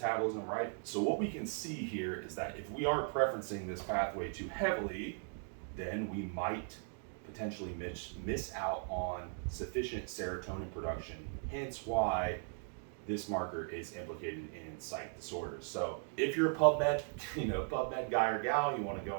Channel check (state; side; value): silent; left; 52 dB below the other